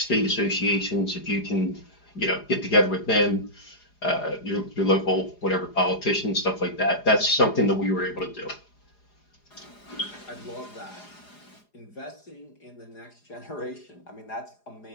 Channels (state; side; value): late; right; 4.9 ms